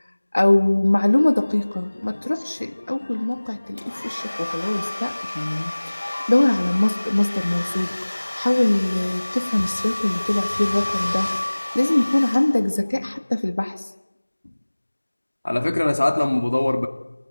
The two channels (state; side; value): inverted; both; correlation -1.00